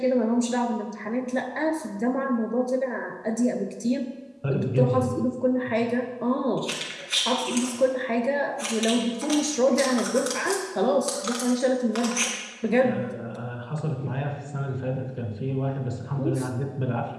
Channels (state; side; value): identical; both; correlation 1.00